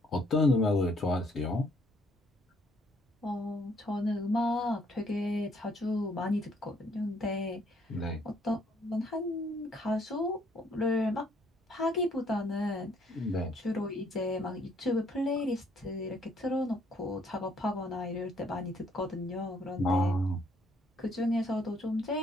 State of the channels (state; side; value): normal; both; correlation 0.66